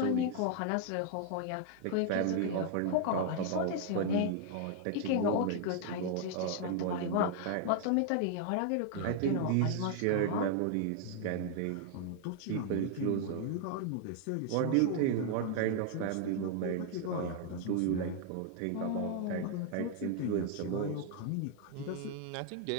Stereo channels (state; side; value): different; both; correlation 0.00